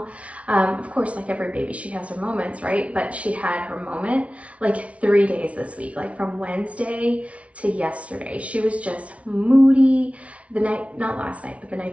Of course, like every baby, she has her moments, right? But she had her moment like 3 days this week, like from Wednesday to yesterday. She was just moody. The night, not last night, but the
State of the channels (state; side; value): late; left; 0.064 ms